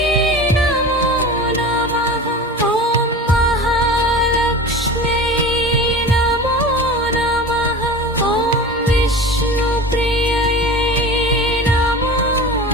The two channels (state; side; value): normal; both; correlation 0.34